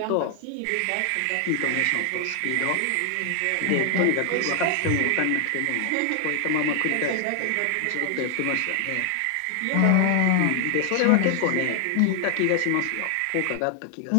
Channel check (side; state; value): both; different; correlation 0.00